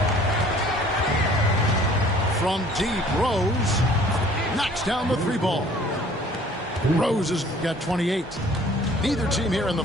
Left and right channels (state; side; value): normal; both; correlation 0.53